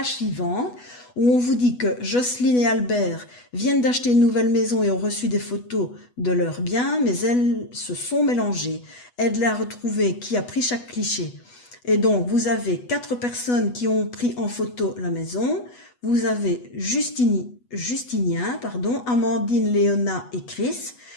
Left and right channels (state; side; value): late; right; 8.2 ms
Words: suivante où on vous dit que Jocelyne et Albert viennent d'acheter une nouvelle maison et ont reçu des photos de leurs biens, mais elles se sont mélangées. Aide-les à retrouver qui a pris chaque cliché. Et donc, vous avez 4 personnes qui ont pris en photo la maison. Vous avez Justinien, Amandine, Léona et Chris.